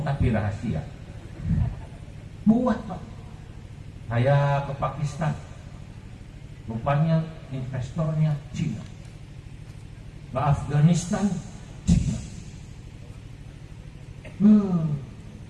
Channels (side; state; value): both; identical; correlation 1.00